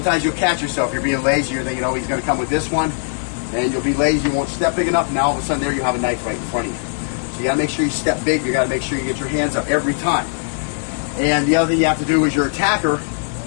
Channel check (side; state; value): right; silent; digital silence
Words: you'll catch yourself. You're being lazy. You're thinking, oh, he's going to come with this one, and you'll be lazy. You won't step big enough. Now all of a sudden, there you have a knife right in front of you. So you got to make sure you step big. You got to make sure you get your hands up every time. And the other thing you have to do is your attacker.